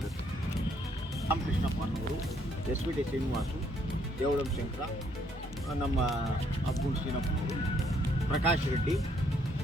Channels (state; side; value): normal; both; correlation 0.69